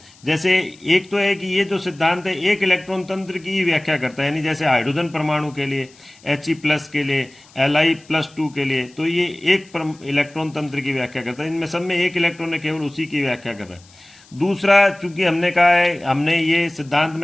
जैसे एक तो है कि ये जो सिद्धांत है एक इलेक्ट्रॉन तंत्र की व्याख्या करता है, यानी जैसे हाइड्रोजन परमाणु के लिए, He+ के लिए, Li+2 के लिए, तो ये एक इलेक्ट्रॉन तंत्र की व्याख्या करता है। इनमें सब में एक इलेक्ट्रॉन है, केवल उसी की व्याख्या कर रहा है। दूसरा, चूंकि हमने कहा है, हमने ये सिद्धांत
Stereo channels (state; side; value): noise; left; hiss, 27 dB below the sound